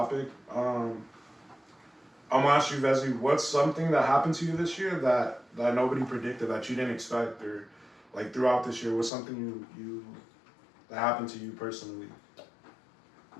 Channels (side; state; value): right; drops out; at 9.1 s